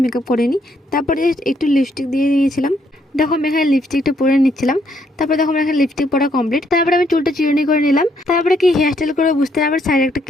মেকআপ করিনি। তারপরে একটু লিপস্টিক দিয়ে দিয়েছিলাম। দেখো আমি এখানে লিপস্টিকটা পরে নিচ্ছিলাম। তারপরে দেখো আমার এখানে লিপস্টিক পরা কমপ্লিট। তারপরে আমি চুলটা চিরুনি করে নিলাম। তারপরে কি হেয়ার স্টাইল করে বুঝতে না, আবার সাইডে একটা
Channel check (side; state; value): both; normal; correlation 0.72